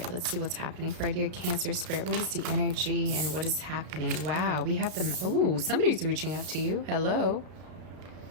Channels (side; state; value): left; late; 33 ms